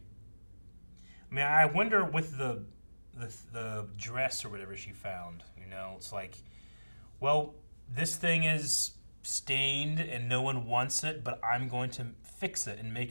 I mean, I wonder with the dress or whatever she found, it's like, well, this thing is stained and no one wants it, but I'm going to fix it and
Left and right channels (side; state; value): both; inverted; correlation -1.00